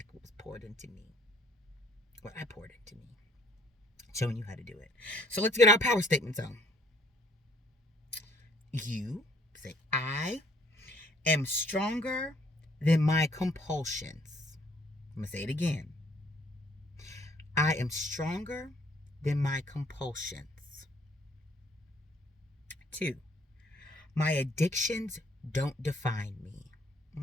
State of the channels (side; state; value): both; normal; correlation 0.62